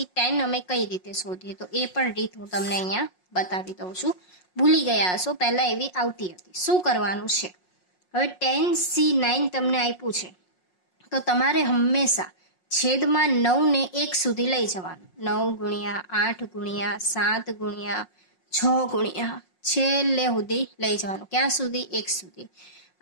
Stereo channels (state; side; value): late; right; 5.5 ms